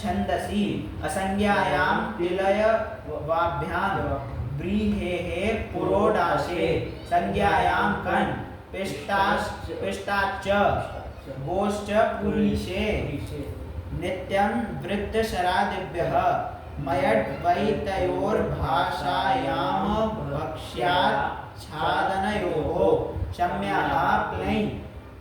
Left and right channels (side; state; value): both; identical; correlation 1.00